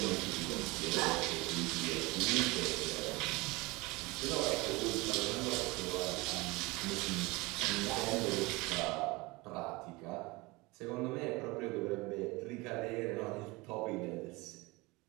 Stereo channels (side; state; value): left; quieter; 23.6 dB